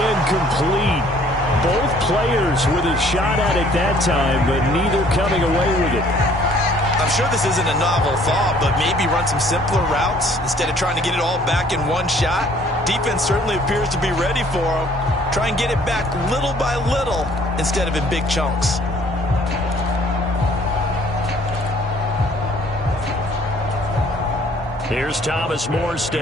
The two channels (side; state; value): both; normal; correlation 0.58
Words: Both players with a shot at it that time, but neither coming away with it. I'm sure this isn't a novel thought, but maybe run some simpler routes instead of trying to get it all back in one shot. Defense certainly appears to be ready for them. Try and get it back little by little instead of in big chunks. Here's Thomas